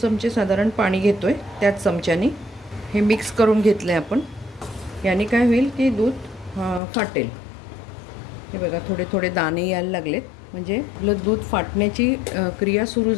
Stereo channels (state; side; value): drops out; right; at 6.8 s